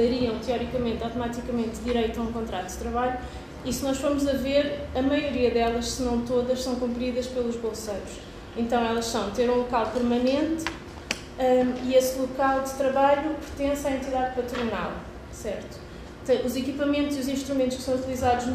teoricamente, automaticamente, direito a um contrato de trabalho. E se nós formos a ver, a maioria delas, se não todas, são cumpridas pelos bolseiros. Então elas são ter um local permanente e esse local de trabalho pertence à entidade patronal, certo? Os equipamentos e os instrumentos que são utilizados no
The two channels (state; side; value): identical; both; correlation 1.00